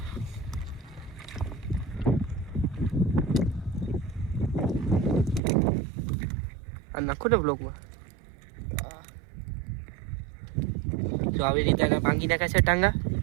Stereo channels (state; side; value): drops out; left; at 5.4 s